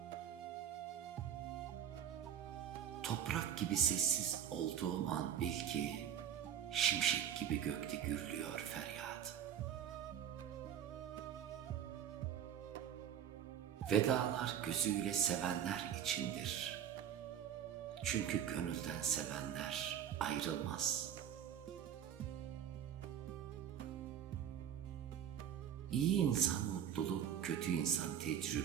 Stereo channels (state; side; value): quieter; left; 9.4 dB